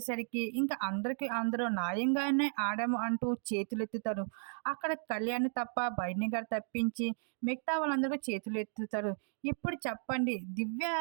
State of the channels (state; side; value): silent; left; 55 dB below the other